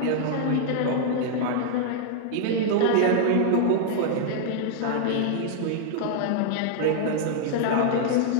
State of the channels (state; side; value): different; both; correlation -0.01